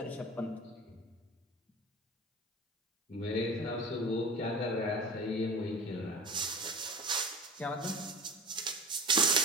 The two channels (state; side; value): normal; both; correlation 0.33